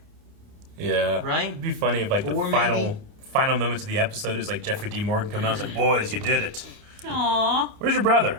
Yeah. Right? It'd be funny if, like, the final moments of the episode is, like, Jeffrey D. Morgan come out and was like, boys, you did it. Aww. Where's your brother?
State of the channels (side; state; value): left; late; 28 ms